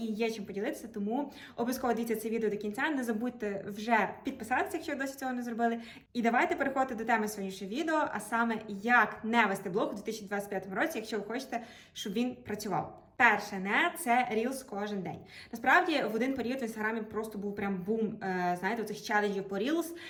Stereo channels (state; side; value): identical; both; correlation 1.00